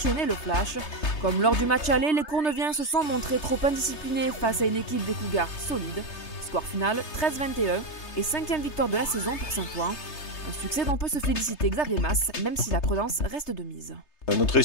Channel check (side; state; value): right; late; 3.3 ms